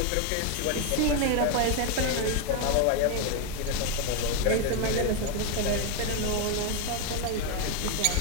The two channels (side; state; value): both; different; correlation 0.01